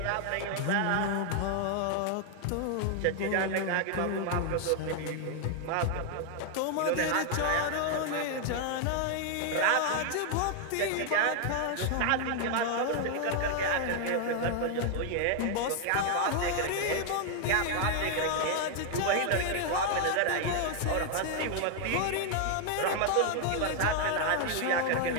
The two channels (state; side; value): different; both; correlation 0.00